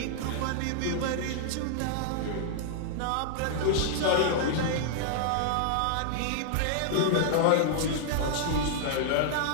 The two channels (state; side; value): different; both; correlation -0.01